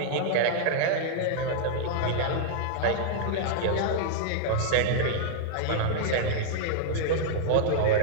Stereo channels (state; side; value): different; both; correlation -0.01